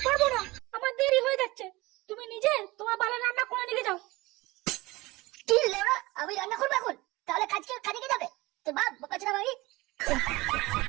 পারবো না, আমার দেরি হয়ে যাচ্ছে। তুমি নিজে তোমার পালে রান্না করে নিয়ে যাও। কি লেওড়া, আমি রান্না করবো এখন? তাহলে কাজকে কাজে যাবে তোর বাপ বোকাচোদা মাগি।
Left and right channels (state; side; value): quieter; left; 21.3 dB